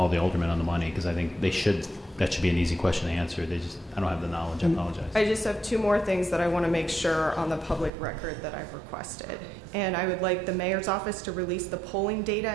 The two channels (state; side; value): drops out; left; at 7.9 s